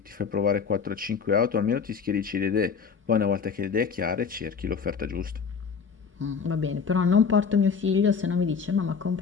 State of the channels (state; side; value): quieter; right; 6.1 dB